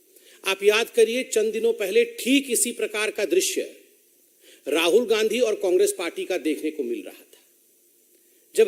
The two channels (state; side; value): identical; both; correlation 1.00